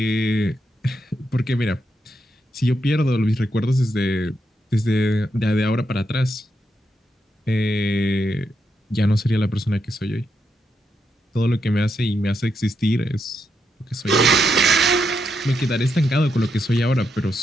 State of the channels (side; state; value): both; normal; correlation 0.82